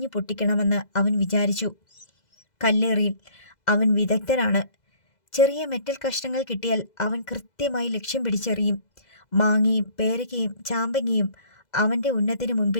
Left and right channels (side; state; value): right; late; 2.0 ms